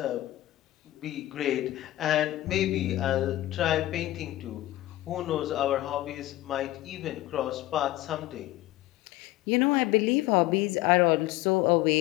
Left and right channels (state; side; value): quieter; right; 16.1 dB